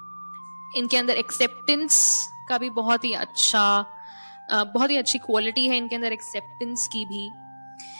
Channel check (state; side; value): inverted; both; correlation -1.00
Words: इनके अंदर एक्सेप्टेंस का भी बहुत ही अच्छी क्वालिटी है इनके अंदर, एक्सेप्टेंस की भी।